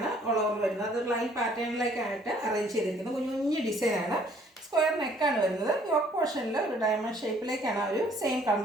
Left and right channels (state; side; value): normal; both; correlation 0.61